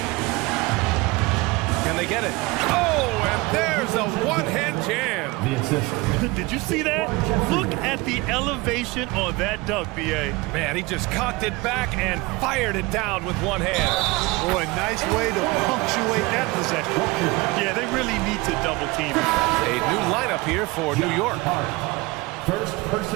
Can they get it? Oh, and there's a one-hand jam. The assist. Did you see that? Look at the elevation on that dunk, B.A. Man, he just cocked it back and fired it down with one hand. Boy, nice way to punctuate that possession. Yeah, they really need to double team him. A new lineup here for New York. First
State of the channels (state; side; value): quieter; left; 23.2 dB